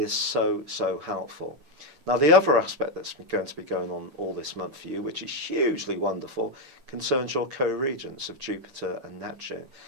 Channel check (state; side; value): late; left; 8.8 ms